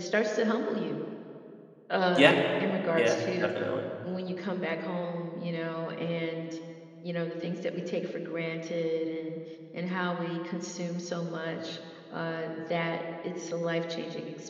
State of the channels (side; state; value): both; identical; correlation 1.00